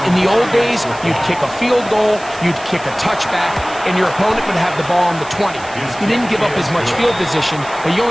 it. In the old days, you'd kick a field goal, you'd kick a touchback, and your opponent would have the ball on the 20. You didn't give up as much field position, but you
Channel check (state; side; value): noise; right; hiss, 18 dB below the sound